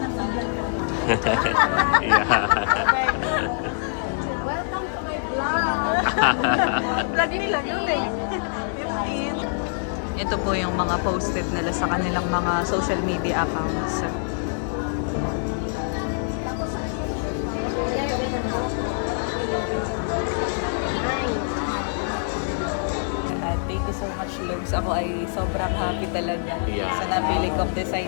Yeah. Welcome to my vlog. Lagi nila yun eh. Ito po yung mga posted nila sa kanilang mga social media accounts. Thank you so much, Lugs. Ako ay sobrang happy talaga sa napili kong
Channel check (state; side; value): silent; right; digital silence